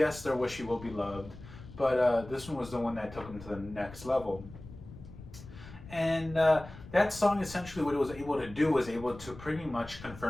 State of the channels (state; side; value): noise; left; rumble, 16 dB below the sound